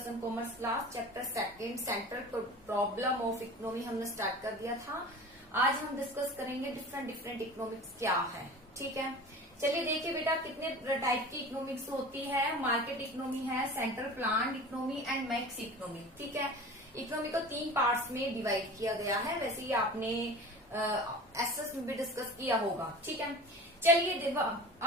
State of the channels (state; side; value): normal; both; correlation 0.37